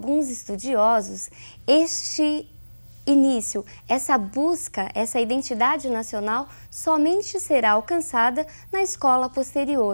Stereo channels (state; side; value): inverted; both; correlation -1.00